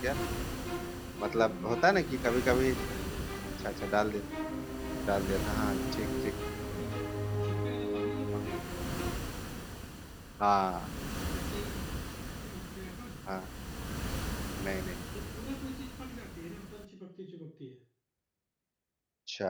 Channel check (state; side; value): identical; both; correlation 1.00